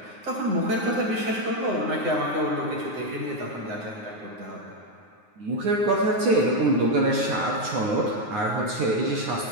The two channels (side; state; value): left; late; 9.5 ms